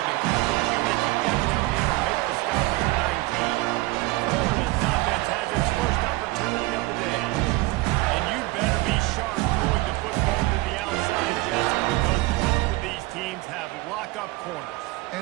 the coverage unit to get down there and make the stop at the 19. Florida's offense has its first opportunity of the day. And you better be sharp throwing the football to the outside, Jesse, because both of these teams have lock-up corners.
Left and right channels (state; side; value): quieter; left; 20.7 dB